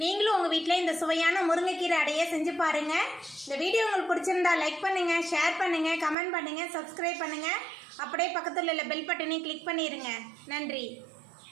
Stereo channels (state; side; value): drops out; left; at 6.2 s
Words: நீங்களும் உங்கள் வீட்டில் இந்த சுவையான முருங்கைக்கீரை அடையை செஞ்சு பாருங்கள். இந்த வீடியோ உங்களுக்கு பிடிச்சிருந்தா லைக் பண்ணுங்கள், ஷேர் பண்ணுங்கள், கமெண்ட் பண்ணுங்கள், சப்ஸ்கிரைப் பண்ணுங்கள். அப்படியே பக்கத்தில் உள்ள பெல் பட்டனையும் கிளிக் பண்ணிடுங்க. நன்றி.